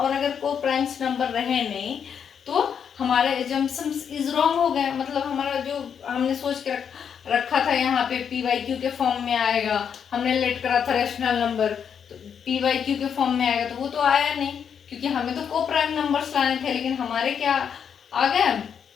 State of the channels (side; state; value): right; quieter; 7.6 dB